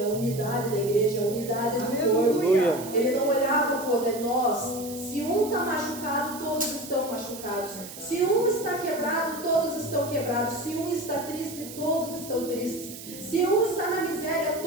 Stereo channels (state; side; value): noise; right; hiss, 13 dB below the sound